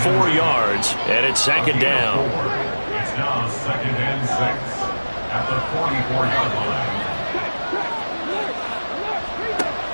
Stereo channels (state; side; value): inverted; both; correlation -1.00